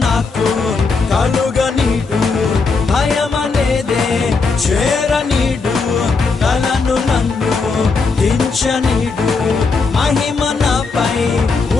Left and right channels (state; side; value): quieter; right; 4.4 dB